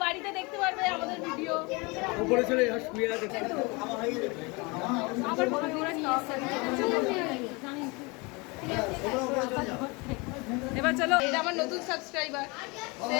বাড়িতে দেখতে পারবে আমাদের ভিডিও। উপরে চলে যা শুয়ে আছে আবার ভাবি ওরা কি এবার চলো, এটা আমার নতুন সাবস্ক্রাইবার। সে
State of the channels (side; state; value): right; quieter; 27.4 dB